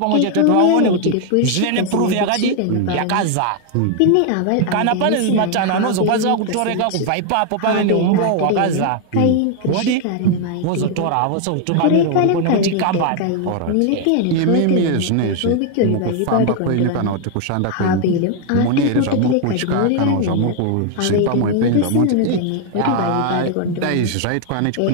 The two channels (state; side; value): different; both; correlation 0.00